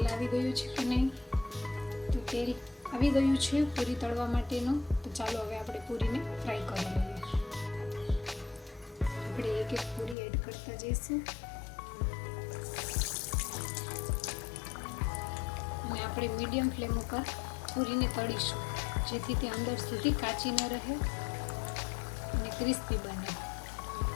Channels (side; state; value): right; drops out; at 10.2 s